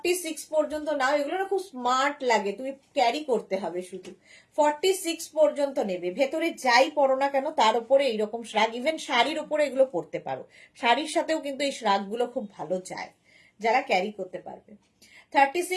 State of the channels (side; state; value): both; identical; correlation 1.00